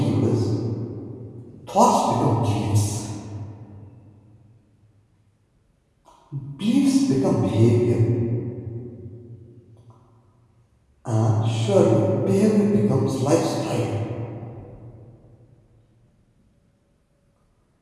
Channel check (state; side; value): identical; both; correlation 1.00